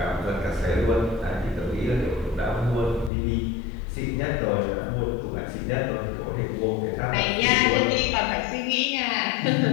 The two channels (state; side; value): drops out; right; at 3.1 s